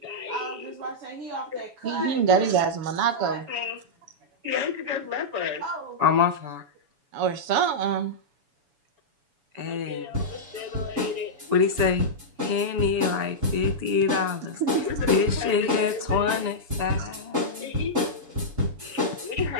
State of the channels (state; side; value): late; left; 7.0 ms